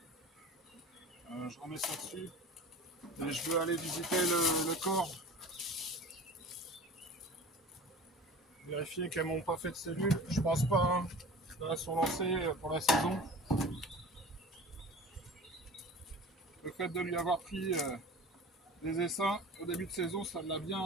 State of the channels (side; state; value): both; normal; correlation 0.39